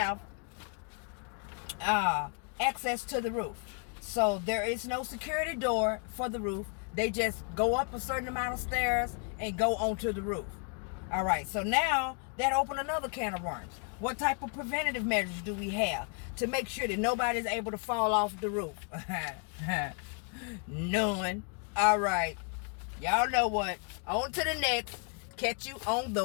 access to the roof. So there is no security door for the roof. They just go up a certain amount of stairs and go onto the roof. All right, so now that opened another can of worms. What type of preventative measures do we have to make sure that nobody's able to fall off the roof? None. All right, y'all know what. On to the next. Catch you on the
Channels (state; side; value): quieter; right; 39.1 dB